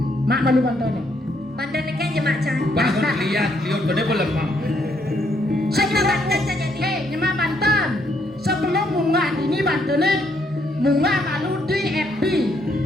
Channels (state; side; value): normal; both; correlation 0.72